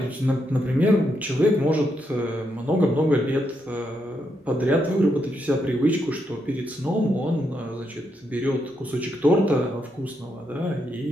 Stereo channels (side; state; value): both; normal; correlation 0.80